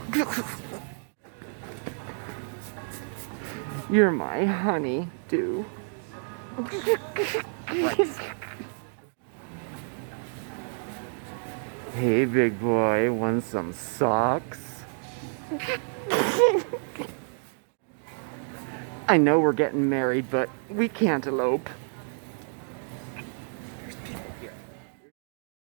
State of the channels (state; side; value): silent; left; 58 dB below the other